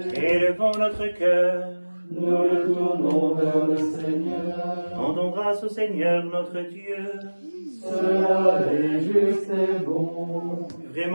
Élevons notre cœur. nous le tournons vers le Seigneur. Rendons grâce au Seigneur notre Dieu. Cela est juste et bon.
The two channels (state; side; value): inverted; both; correlation -1.00